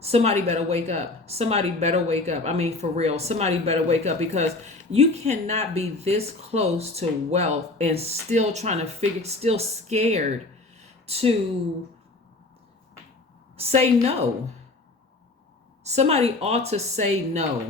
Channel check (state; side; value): quieter; right; 3.2 dB